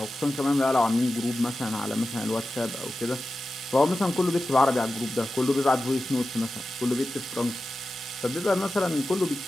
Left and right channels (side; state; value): both; normal; correlation 0.93